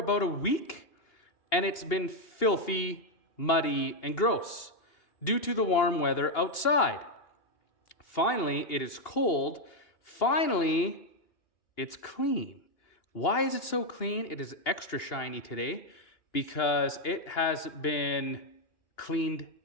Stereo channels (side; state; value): right; late; 2.8 ms